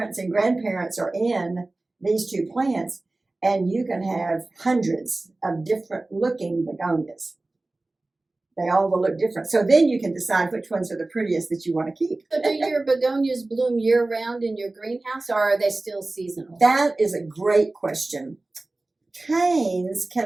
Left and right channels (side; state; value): left; quieter; 3.0 dB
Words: and grandparents are in these 2 plants, and you can have hundreds of different looking begonias. They all will look different. So then you can decide which ones are the prettiest that you want to keep. So do your begonias bloom year-round in your greenhouse, or are they still seasonal? That is a great question. Canes